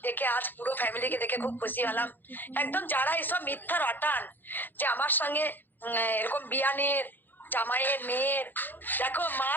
দেখে আজ পুরো ফ্যামিলিকে দেখে খুব খুশি হলাম। একদম যারা এসব মিথ্যা রটান যে আমার সঙ্গে এরকম বিয়ানের জামাইয়ের মেয়ের, দেখো মা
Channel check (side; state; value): right; late; 0.090 ms